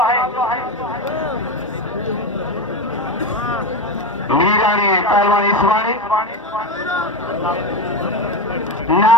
मीरानी पहलवान हिसबानी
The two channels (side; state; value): both; normal; correlation 0.19